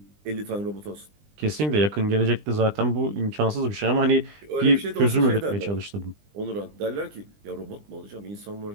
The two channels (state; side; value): late; left; 20 ms